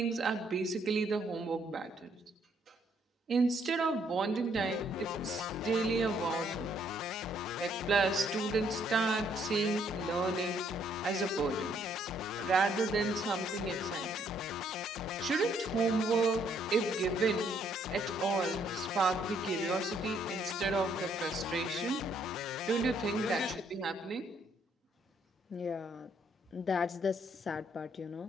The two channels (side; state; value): both; normal; correlation 0.69